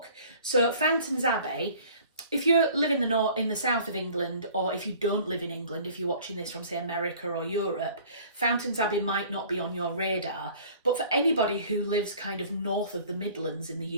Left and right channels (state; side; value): inverted; both; correlation -0.50